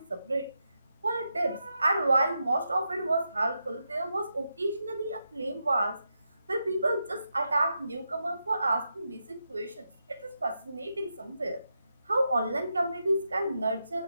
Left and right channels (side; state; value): both; inverted; correlation -0.86